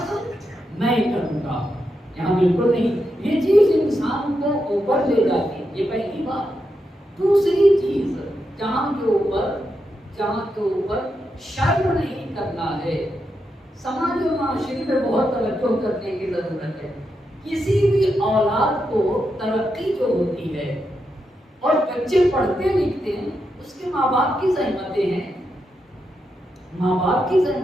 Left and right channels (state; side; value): normal; both; correlation 0.85